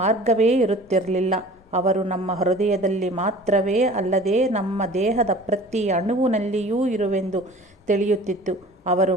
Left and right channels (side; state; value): both; normal; correlation 0.45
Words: ಮಾರ್ಗವೇ ಇರುತ್ತಿರಲಿಲ್ಲ. ಅವರು ನಮ್ಮ ಹೃದಯದಲ್ಲಿ ಮಾತ್ರವೇ ಅಲ್ಲದೆ ನಮ್ಮ ದೇಹದ ಪ್ರತಿ ಅಣುವಿನಲ್ಲಿಯೂ ಇರುವೆಂದು ತಿಳಿಯುತ್ತಿತ್ತು. ಅವರು